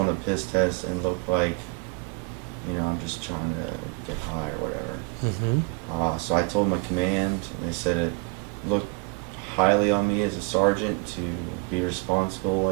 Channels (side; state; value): left; quieter; 29.4 dB